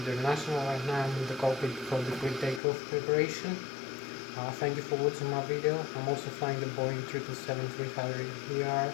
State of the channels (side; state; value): right; drops out; at 2.6 s